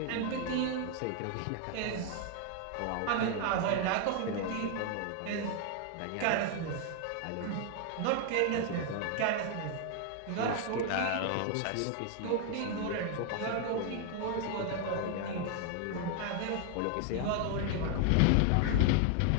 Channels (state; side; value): different; both; correlation 0.00